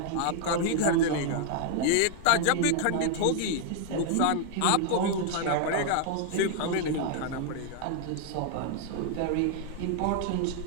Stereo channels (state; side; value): different; both; correlation 0.00